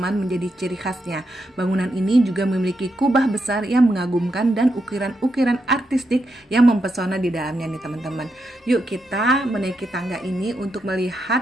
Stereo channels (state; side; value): normal; both; correlation 0.83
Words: menjadi ciri khasnya. Bangunan ini juga memiliki kubah besar yang mengagumkan dan ukiran-ukiran artistik yang mempesona di dalamnya nih teman-teman. Yuk kita menaiki tangga ini untuk